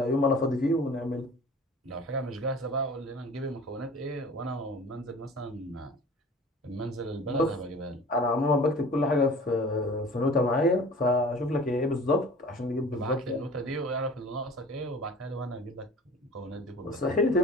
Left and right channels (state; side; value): normal; both; correlation 0.43